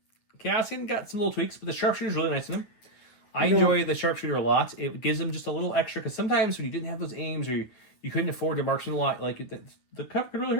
Cassian got some little tweaks, but the sharpshooter's really nice in him. I enjoy the sharpshooter a lot. It gives him just a little extra, because sometimes when you didn't have those aims, or you couldn't afford to marksman a lot, like the cover could really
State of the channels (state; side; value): late; right; 9.5 ms